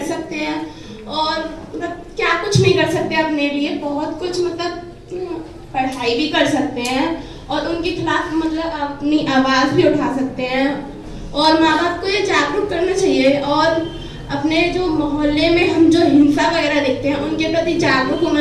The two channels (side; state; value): both; identical; correlation 1.00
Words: सकते हैं, और मतलब क्या कुछ नहीं कर सकते अपने लिए, बहुत कुछ मतलब पढ़ाई भी कर सकते हैं और उनके खिलाफ मतलब अपनी आवाज़ भी उठा सकते हैं। और माँ बाप को ये जागरूक करना चाहिए, और अपने जो मोहल्ले में हम जो हिंसा वगैरह देखते हैं उनके प्रति जागरूक